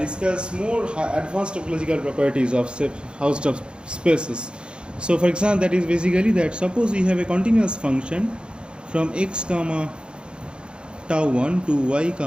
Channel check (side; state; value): left; late; 0.053 ms